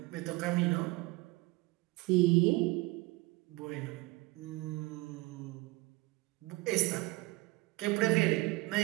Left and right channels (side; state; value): left; quieter; 21.9 dB